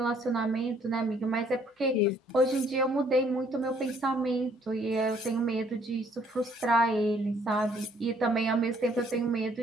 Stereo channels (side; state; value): both; normal; correlation 0.63